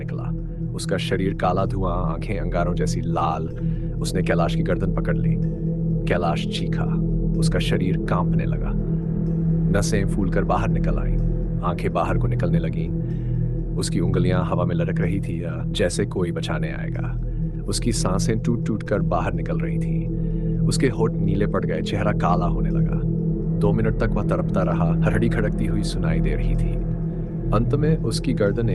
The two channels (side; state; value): both; identical; correlation 1.00